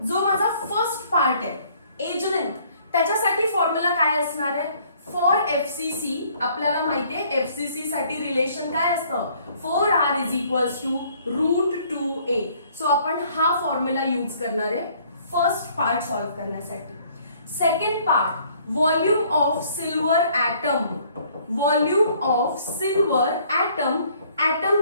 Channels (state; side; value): inverted; both; correlation -0.60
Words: जो माझा फर्स्ट पार्ट आहे एज लेंथ, त्याच्यासाठी फॉर्म्युला काय असणार आहे, फॉर FCC आपल्याला माहितीये FCC साठी रिलेशन काय असतं, 4R is equals to √2a. So आपण हा फॉर्म्युला यूज करणार आहे फर्स्ट पार्ट सॉल्व्ह करण्यासाठी. Second part, volume of silver atom. Volume of silver atom. Atom